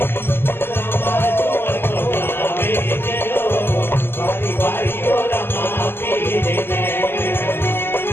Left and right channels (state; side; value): late; right; 0.11 ms